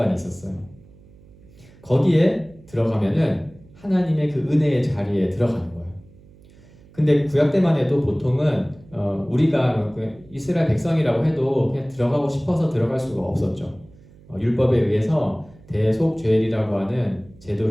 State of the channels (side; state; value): right; noise; hum, 25 dB below the sound